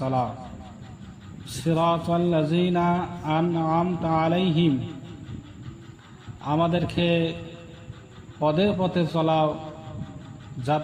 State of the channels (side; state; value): both; identical; correlation 1.00